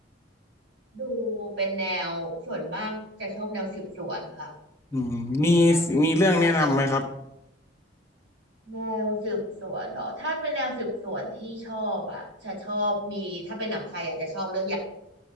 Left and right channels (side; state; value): both; normal; correlation 0.39